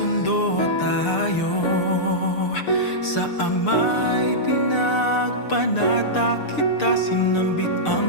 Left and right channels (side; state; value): right; late; 6.7 ms